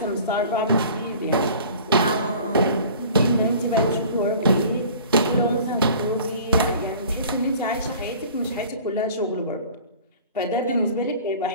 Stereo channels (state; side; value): inverted; both; correlation -0.45